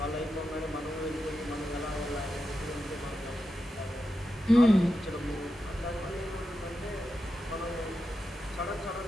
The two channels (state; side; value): normal; both; correlation 0.89